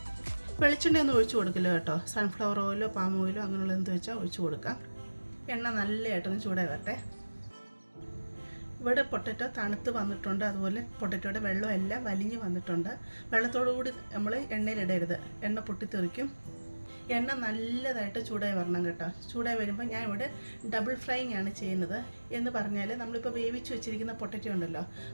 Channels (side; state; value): both; inverted; correlation -1.00